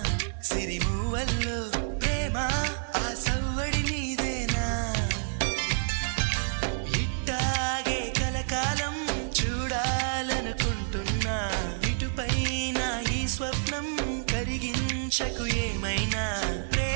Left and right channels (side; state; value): left; silent; digital silence